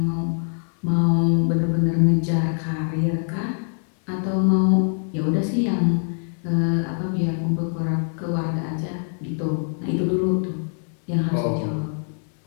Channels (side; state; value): right; silent; digital silence